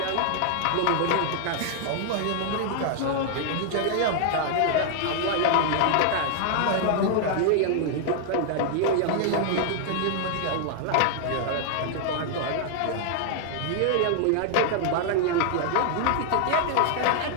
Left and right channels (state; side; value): different; both; correlation -0.01